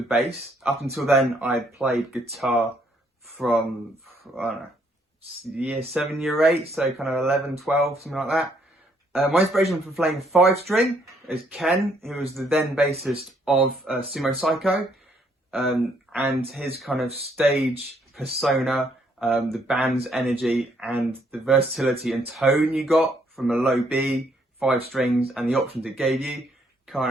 bass. Up until then, I played guitar from, I don't know, year 7, year 8, so kind of 11, 12, something like that. My inspiration for playing 5-string is Ken, who was the then bassist of Sumo Psycho, and his kind of stage persona, the band's energy, and the versatility and tone you got from a low B, 5 strings, and the options it gave you,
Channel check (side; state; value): both; normal; correlation 0.69